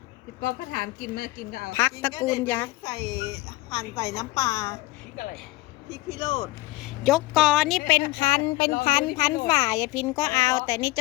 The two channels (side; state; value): right; quieter; 19.9 dB